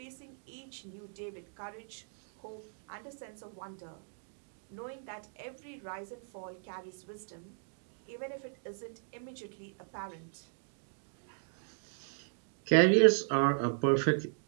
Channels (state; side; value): silent; left; digital silence